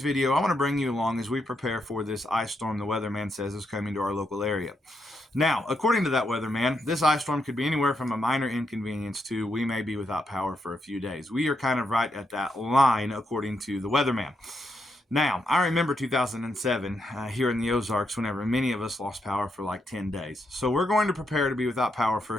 video, I want to bring you along as we prepare for this ice storm the weatherman says is coming to our local area. Now, according to that weatherman, this ice storm could be anywhere from a minor inconvenience to we may be without power for a few days. We are kind of right at that line, according to the weatherman. Now, I remember 2007 here in the Ozarks whenever many of us lost power for like 10 days. So we're going to prepare to be without power for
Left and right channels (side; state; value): both; normal; correlation 0.81